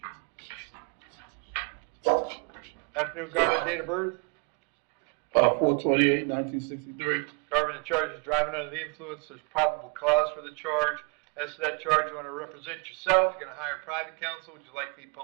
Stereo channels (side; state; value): left; quieter; 34.8 dB